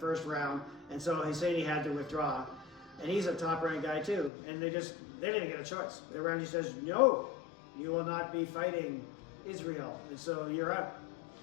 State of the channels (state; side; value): drops out; right; at 4.3 s